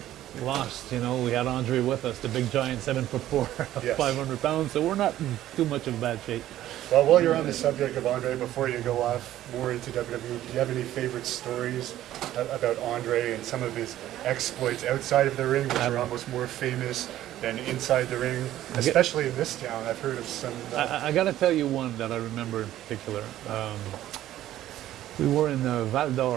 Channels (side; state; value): left; quieter; 13.3 dB